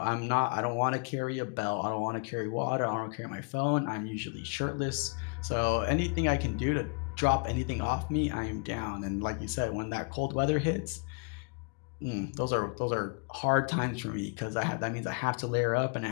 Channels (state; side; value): quieter; right; 35.7 dB